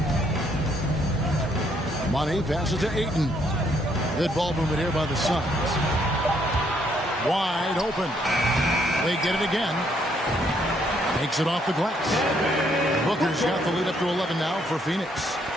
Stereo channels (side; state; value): both; normal; correlation 0.70